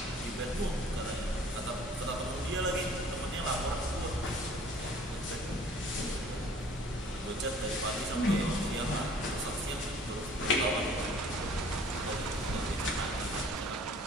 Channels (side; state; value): both; normal; correlation 0.53